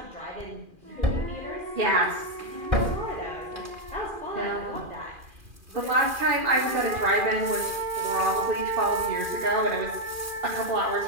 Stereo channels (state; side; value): late; left; 2.4 ms